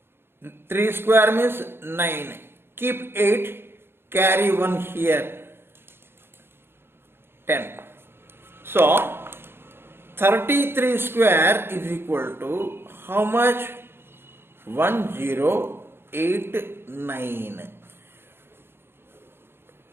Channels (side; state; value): left; late; 0.11 ms